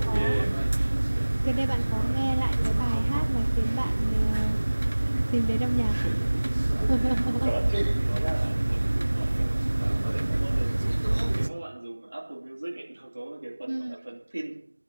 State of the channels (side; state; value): both; inverted; correlation -1.00